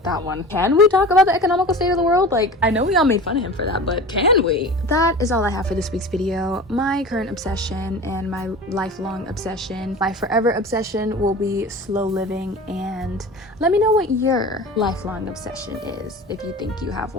that one. Can we talk about the economical state of the world? Like, I know we all made fun of him for that, but can we? That is all I have for this week's video. My current obsession and my lifelong obsession, my forever obsession, will be slow living, and let me know what your lifelong obsession is if you think you have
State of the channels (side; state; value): both; normal; correlation 0.35